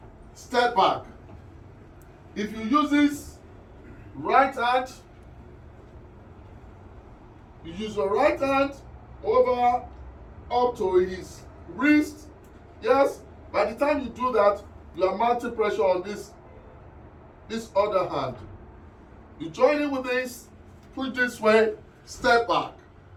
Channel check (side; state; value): both; identical; correlation 1.00